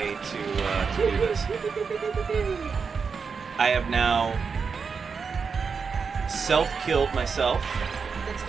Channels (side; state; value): left; quieter; 5.5 dB